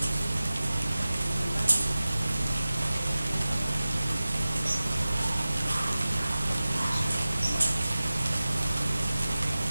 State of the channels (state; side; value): inverted; both; correlation -0.97